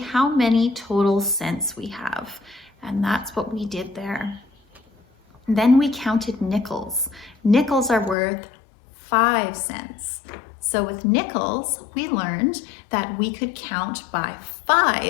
how many total cents we have. And that's what we did there. Then we counted nickels. Nickels are worth 5 cents. So with nickels, we learned that we could count by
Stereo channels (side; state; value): right; drops out; at 8.2 s